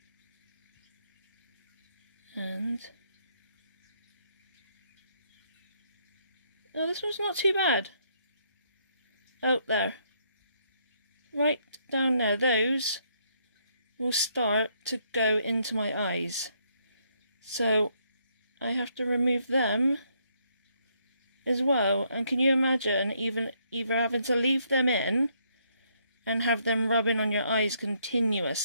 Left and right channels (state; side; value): inverted; both; correlation -0.72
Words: oh, this one's not too bad. Oh, there, right down there, those will start to go into my eyes, so I have to remove them as well. And can you imagine either having to leave them in and have them rubbing on your eyes